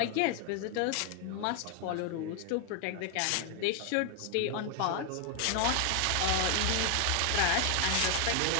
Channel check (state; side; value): different; both; correlation 0.01